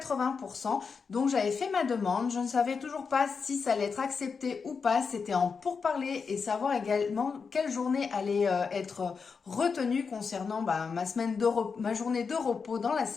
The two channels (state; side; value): quieter; right; 5.4 dB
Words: Donc j'avais fait ma demande, je ne savais toujours pas si ça allait être accepté ou pas. C'était en pourparler et savoir également quelle journée allait être retenue concernant ma journée de repos dans la